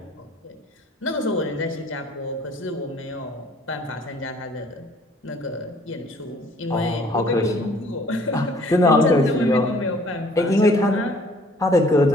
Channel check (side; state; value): both; normal; correlation 0.56